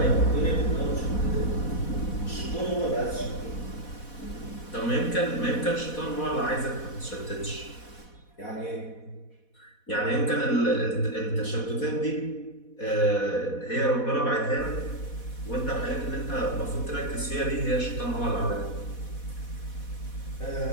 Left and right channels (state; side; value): late; right; 4.1 ms